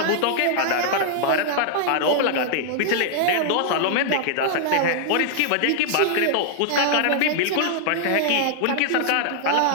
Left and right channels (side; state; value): both; different; correlation -0.01